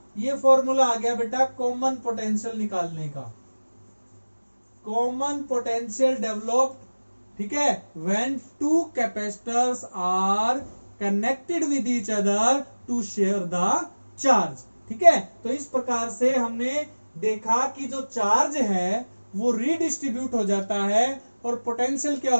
ये फॉर्मूला आ गया बेटा कॉमन पोटेंशियल निकालने का। कॉमन पोटेंशियल डेवलप्ड, ठीक है, when two capacitors are connected with each other to share the charge. ठीक है, तो इस प्रकार से हमने देखा कि जो चार्ज है वो रीडिस्ट्रीब्यूट हो जाता है और पोटेंशियल क्या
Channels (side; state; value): both; inverted; correlation -1.00